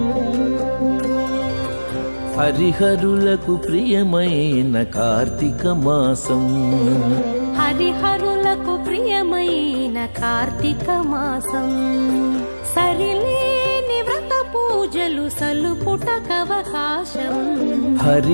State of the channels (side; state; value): both; inverted; correlation -1.00